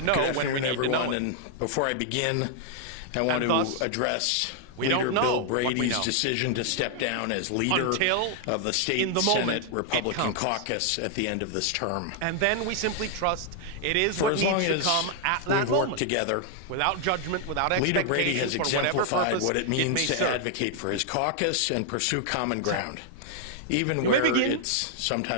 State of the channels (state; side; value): different; both; correlation 0.00